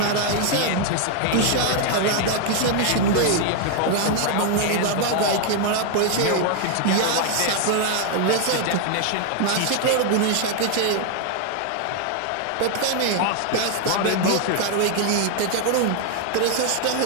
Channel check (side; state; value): both; different; correlation 0.00